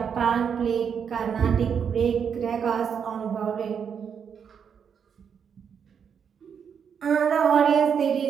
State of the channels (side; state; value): left; quieter; 7.2 dB